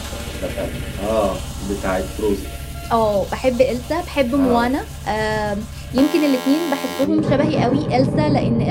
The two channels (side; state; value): both; identical; correlation 1.00